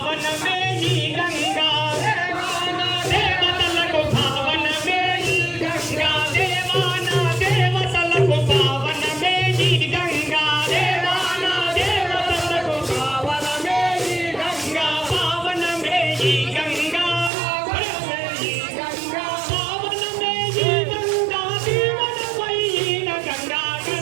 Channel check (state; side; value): drops out; left; at 17.3 s